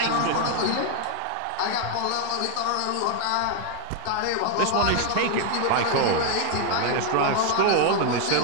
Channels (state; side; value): different; both; correlation 0.00